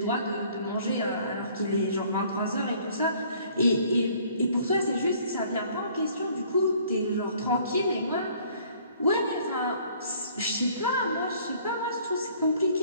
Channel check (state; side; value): inverted; both; correlation -0.58